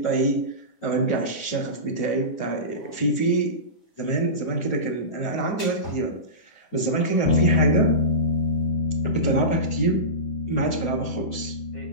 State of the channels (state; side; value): late; right; 9.2 ms